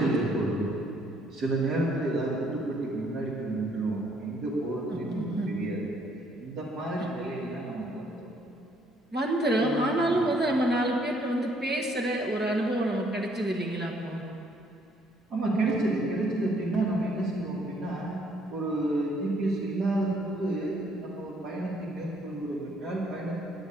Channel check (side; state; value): both; normal; correlation 0.66